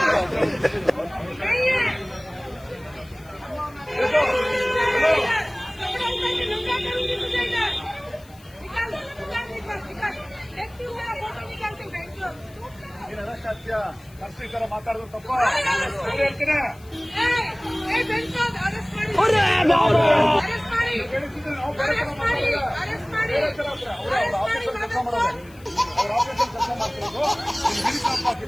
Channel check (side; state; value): left; noise; hiss, 26 dB below the sound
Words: ತರ ಮಾತಾಡೋದು ತಪ್ಪ ಹೇಳ್ತೀನಿ.